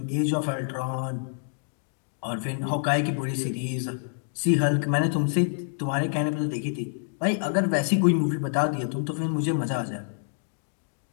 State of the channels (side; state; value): right; silent; digital silence